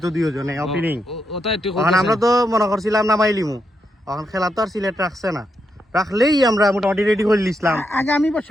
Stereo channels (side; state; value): both; normal; correlation 0.82